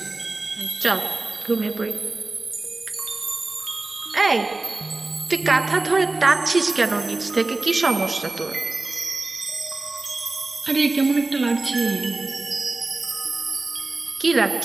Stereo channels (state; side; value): quieter; left; 3.3 dB